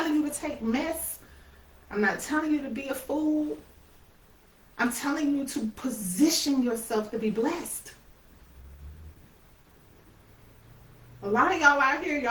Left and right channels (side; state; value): both; identical; correlation 1.00